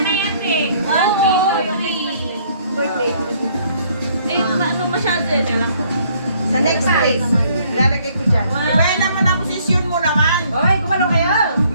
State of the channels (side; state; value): both; inverted; correlation -0.63